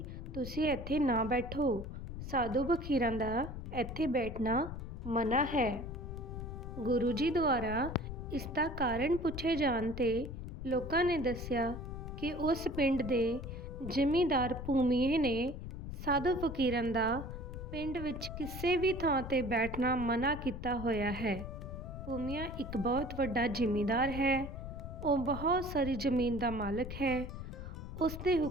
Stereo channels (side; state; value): left; noise; rumble, 8 dB below the sound